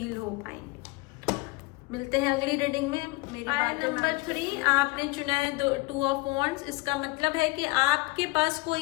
हो पाएंगे। मिलते हैं अगली रीडिंग में। मेरी बात नंबर 3 आपने चुना है 2 ऑफ वॉन्ड्स। इसका मतलब है कि आपके पास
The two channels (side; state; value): right; quieter; 23.8 dB